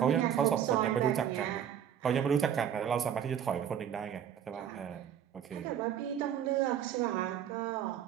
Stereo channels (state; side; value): quieter; left; 9.2 dB